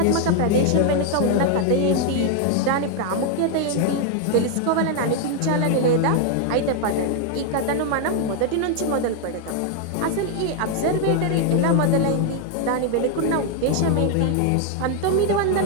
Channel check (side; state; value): both; different; correlation 0.00